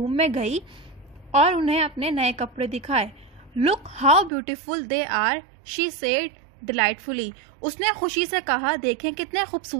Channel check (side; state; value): left; drops out; at 4.3 s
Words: में गई और उन्हें अपने नए कपड़े दिखाए. Look how beautiful they are, she said delightfully. उसने खुशी से कहा देखें कितने